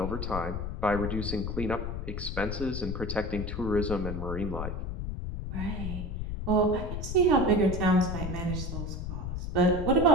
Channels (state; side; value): noise; left; rumble, 4 dB below the sound